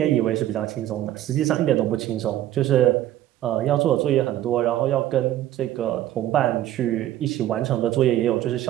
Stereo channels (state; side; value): quieter; left; 13.2 dB